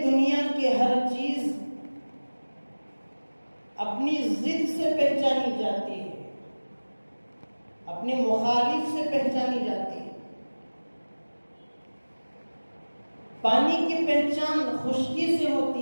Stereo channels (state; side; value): inverted; both; correlation -1.00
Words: دنیا کی ہر چیز اپنی ضد سے پہچانی جاتی ہے، اپنے مخالف سے پہچانی جاتی ہے، پانی کی پہچان خشکی سے